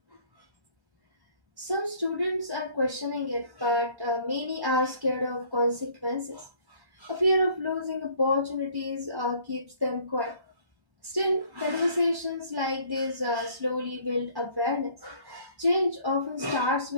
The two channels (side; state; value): left; late; 1.1 ms